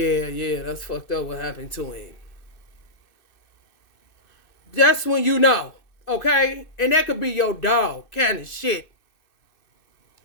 that's fucked up what happened to him. That's when you know, okay? And that could be your dog, kind of shit.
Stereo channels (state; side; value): late; right; 2.6 ms